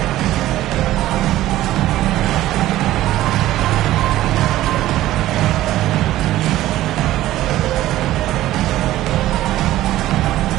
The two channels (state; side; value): quieter; left; 14.9 dB